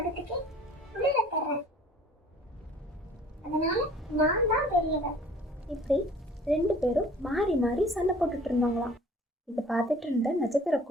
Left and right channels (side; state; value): both; normal; correlation 0.50